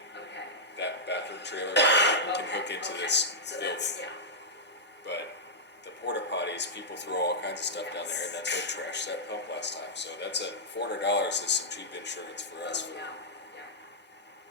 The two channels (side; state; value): both; normal; correlation -0.09